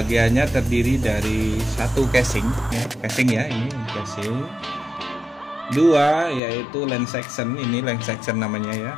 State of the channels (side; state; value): right; drops out; at 6.4 s